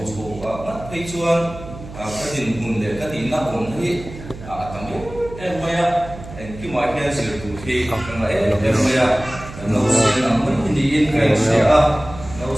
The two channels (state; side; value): noise; right; hum, 14 dB below the sound